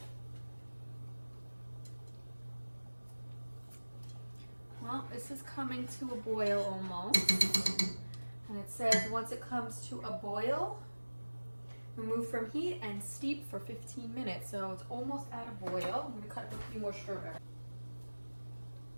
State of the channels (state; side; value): inverted; both; correlation -1.00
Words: Well, this is coming to a boil almost. And it says once it comes to a boil, remove from heat and steep for 15 minutes. So it's almost at a boil. I'm gonna cut a few more strawberries.